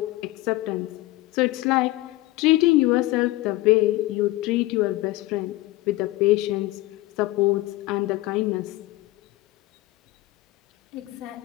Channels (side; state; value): right; quieter; 18.4 dB